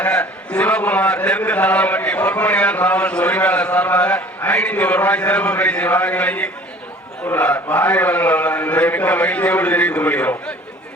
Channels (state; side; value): normal; both; correlation 0.48